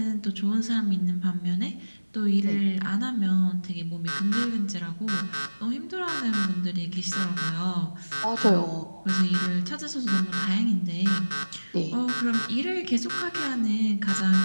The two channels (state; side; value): inverted; both; correlation -1.00